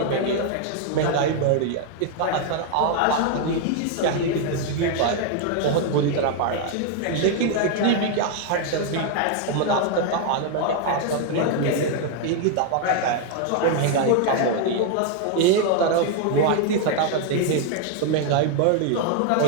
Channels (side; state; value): both; different; correlation 0.00